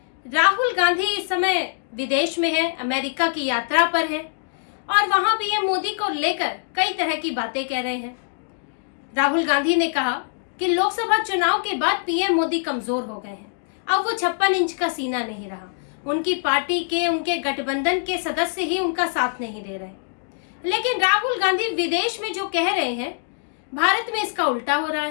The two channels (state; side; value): silent; right; digital silence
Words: राहुल गांधी इस समय विदेश में है, अमेरिका की यात्रा पर है और वहां पीएम मोदी को लेकर कई तरह की बातें कह रहे हैं। राहुल गांधी ने कहा कि लोकसभा चुनाव के बाद पीएम मोदी कमजोर हो गए हैं, अब वो 56 इंच का सीना नहीं रहा। उनकी पार्टी के, उनके गठबंधन के सदस्य ही उनका साथ नहीं दे रहे। लेकिन राहुल गांधी विदेश में जो कह रहे हैं, भारत में इसका उल्टा हो रहा